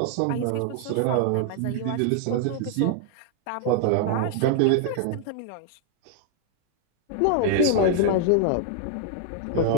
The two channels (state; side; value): different; both; correlation 0.00